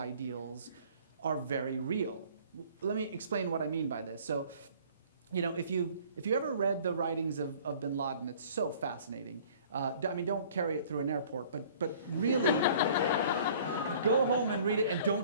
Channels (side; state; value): both; inverted; correlation -0.52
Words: are very real. Let me explain what I mean by this. So, if you ever read the writings of Bin Laden, it's so fascinating. Don't carry it through an airport, but really go home and read it, and don't